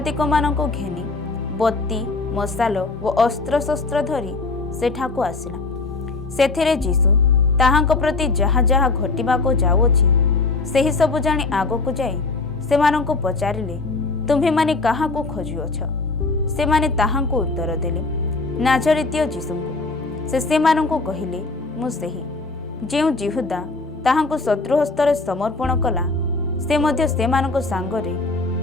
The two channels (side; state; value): right; quieter; 3.6 dB